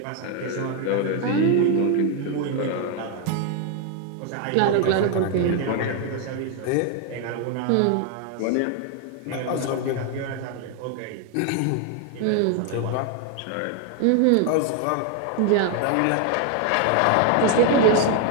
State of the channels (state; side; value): different; both; correlation 0.01